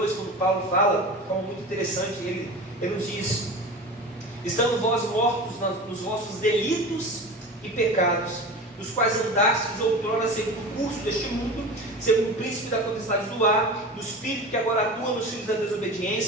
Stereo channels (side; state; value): both; normal; correlation 0.31